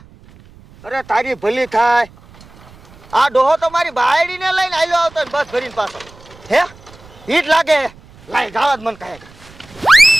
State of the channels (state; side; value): noise; right; rumble, 24 dB below the sound